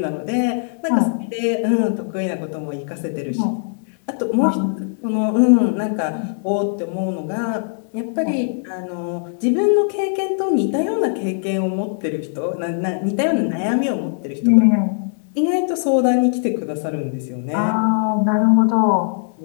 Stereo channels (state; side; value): silent; right; 66 dB below the other